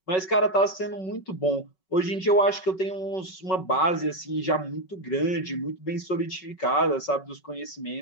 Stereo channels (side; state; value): right; late; 5.3 ms